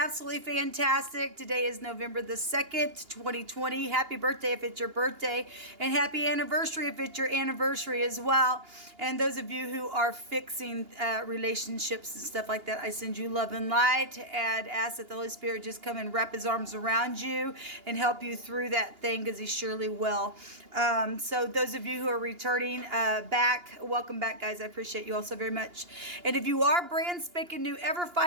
fantastic. Today is November the 2nd, 2020. Happy birthday if it's your birthday, and happy anniversary if it's your anniversary as well. And those of you who are fixing relationships and stuff like that, I send you love and light and ask that the Holy Spirit just come and wrap his arms around you and help you through that thing, because he surely will. So those of you who are returning back, welcome back, guys. I appreciate you all so very much. And if you are brand spanking new, ever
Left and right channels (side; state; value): left; late; 2.8 ms